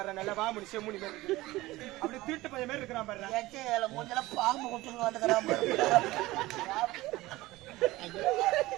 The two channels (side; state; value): left; quieter; 18.6 dB